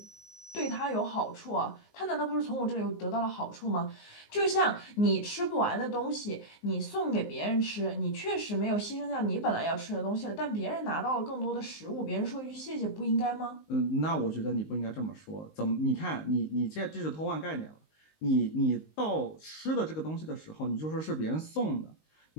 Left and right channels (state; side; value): late; right; 19 ms